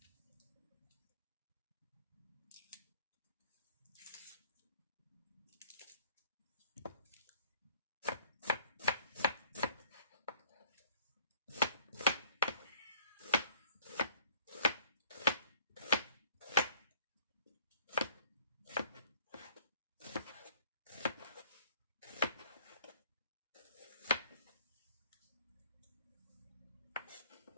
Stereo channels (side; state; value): both; inverted; correlation -0.55